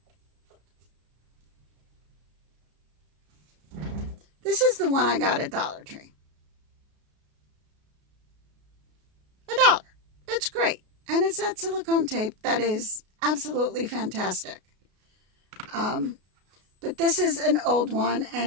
This is the one I got at Dollar Tree. $1. It's great. And it's that silicone tape that is absolutely fantastic. But this is an old one,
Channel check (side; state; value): left; late; 33 ms